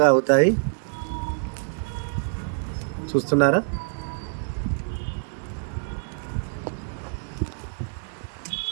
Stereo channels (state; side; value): silent; left; 61 dB below the other